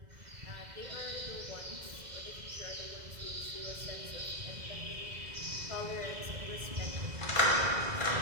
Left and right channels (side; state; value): left; late; 2.0 ms